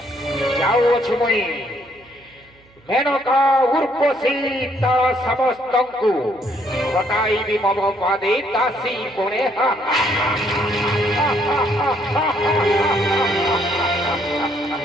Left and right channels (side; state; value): right; noise; hum, 30 dB below the sound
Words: जाऊ अछ मई मेनका उर्वशी तार समस्तंकु ঘটাইবি মম পাদে দাসী কোণে